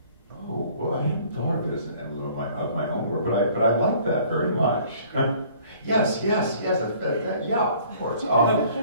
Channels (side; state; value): both; inverted; correlation -0.55